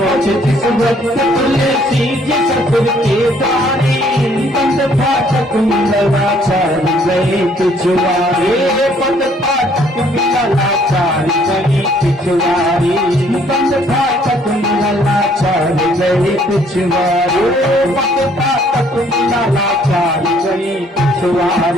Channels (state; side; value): normal; both; correlation 0.63